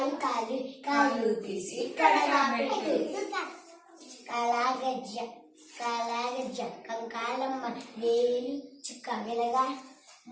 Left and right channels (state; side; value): identical; both; correlation 1.00